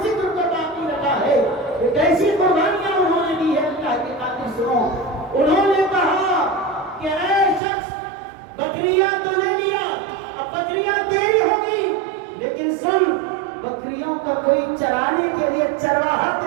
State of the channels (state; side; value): drops out; left; at 7.6 s